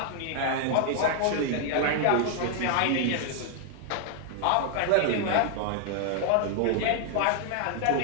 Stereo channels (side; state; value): both; different; correlation -0.01